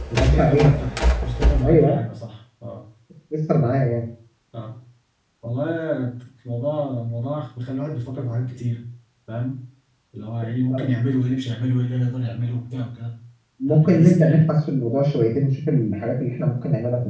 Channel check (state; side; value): identical; both; correlation 1.00